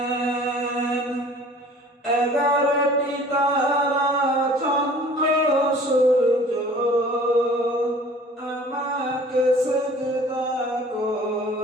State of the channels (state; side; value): normal; both; correlation 0.49